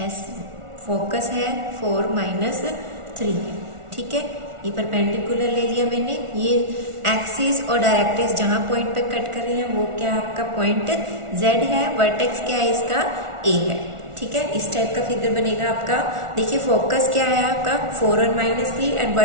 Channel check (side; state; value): left; late; 1.4 ms